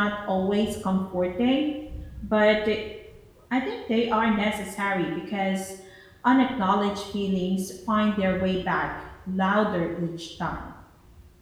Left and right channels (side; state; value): both; identical; correlation 1.00